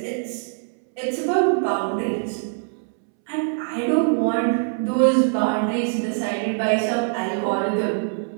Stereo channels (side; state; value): left; silent; 63 dB below the other